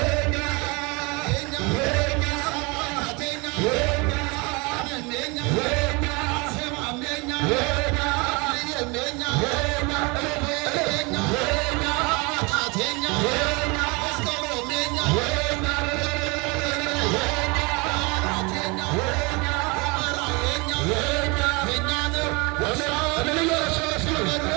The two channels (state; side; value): quieter; left; 28.0 dB